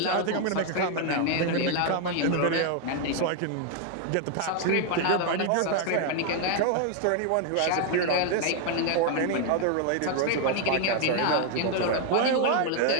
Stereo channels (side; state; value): both; different; correlation 0.00